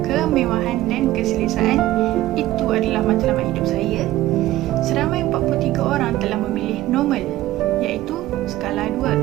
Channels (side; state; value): left; quieter; 15.7 dB